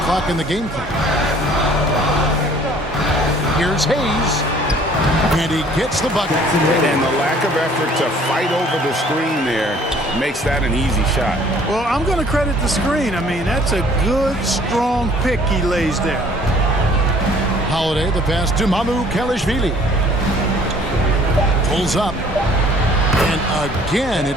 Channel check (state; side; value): normal; both; correlation 0.55